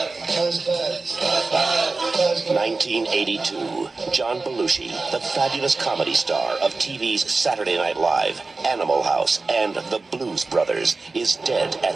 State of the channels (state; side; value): quieter; left; 3.7 dB